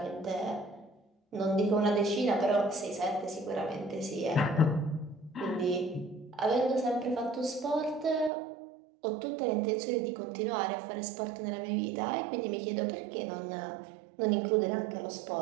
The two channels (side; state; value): left; drops out; at 8.3 s